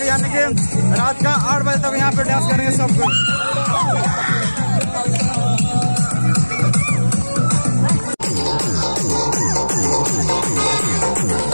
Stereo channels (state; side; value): inverted; both; correlation -1.00